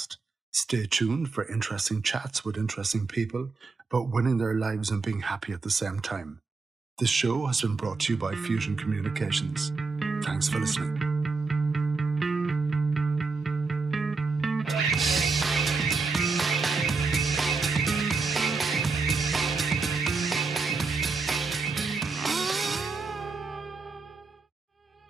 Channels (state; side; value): quieter; left; 4.2 dB